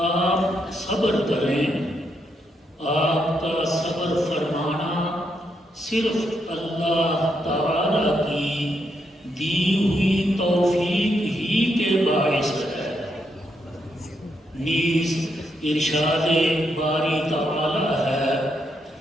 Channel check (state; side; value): normal; both; correlation 0.79